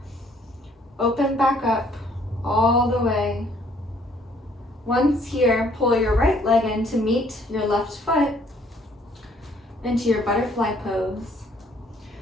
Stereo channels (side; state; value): both; normal; correlation 0.62